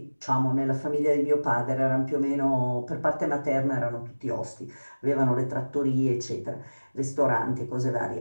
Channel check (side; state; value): both; inverted; correlation -1.00